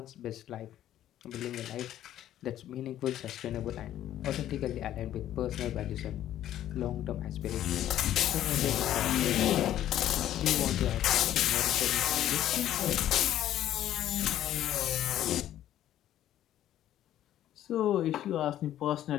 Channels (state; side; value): quieter; right; 12.2 dB